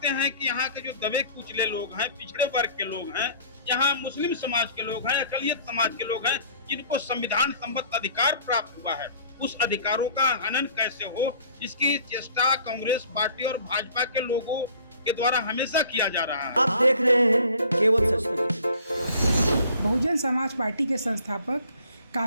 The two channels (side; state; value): both; inverted; correlation -0.51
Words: हैं कि यहाँ के जो दबे कुचले लोग हैं, पिछड़े वर्ग के लोग हैं, यहाँ मुस्लिम समाज के लोग हैं, अकलियत समाज के लोग हैं, जिनको संविधान संबद्ध अधिकार प्राप्त हुआ है, उस अधिकारों का हनन कैसे हो, इसकी चेष्टा कांग्रेस पार्टी और भाजपा के लोगों के द्वारा हमेशा किया जा रहा है। आप देख रहे हैं केवल सच। बहुजन समाज पार्टी के संस्थापक